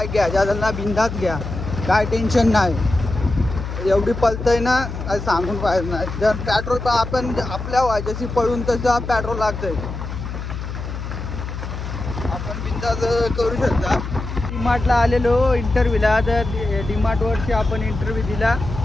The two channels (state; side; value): noise; left; hum, 7 dB below the sound